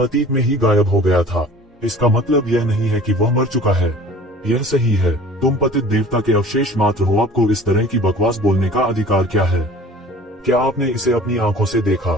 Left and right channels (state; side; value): normal; both; correlation 0.46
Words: अतीत में ही गायब हो गया था। इसका मतलब यह नहीं है कि वह मर चुका है। यह सही है। तुम पतित देवता के अवशेष मात्र हो। आपको इस तरह की बकवास बोलने का अधिकार क्या है? क्या आपने इसे अपनी आंखों से